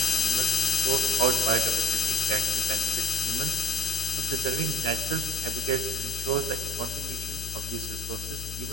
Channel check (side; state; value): left; noise; hum, 9 dB below the sound